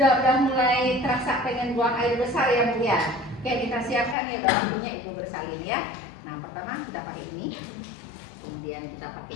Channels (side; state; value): right; drops out; at 4.2 s